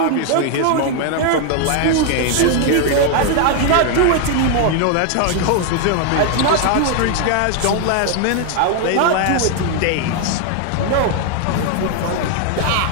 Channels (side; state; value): both; different; correlation 0.00